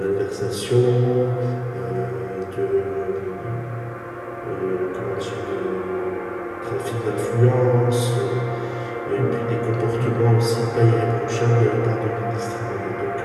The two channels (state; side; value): identical; both; correlation 1.00